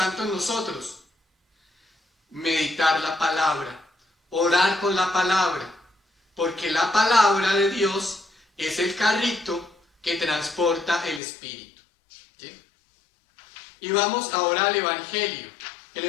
en nosotros? Meditar la palabra, orar con la palabra. Porque la palabra de Dios es el carrito que transporta el Espíritu. ¿Sí? Y vamos ahora al Evangelio. El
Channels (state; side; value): drops out; right; at 11.2 s